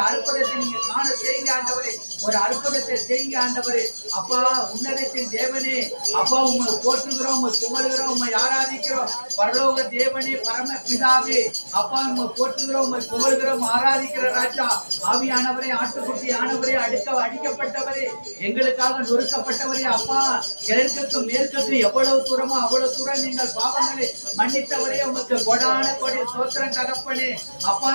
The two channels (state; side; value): inverted; both; correlation -1.00